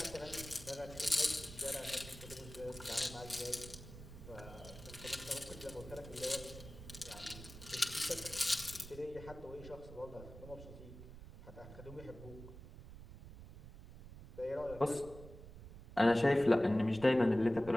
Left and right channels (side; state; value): right; noise; rumble, 14 dB below the sound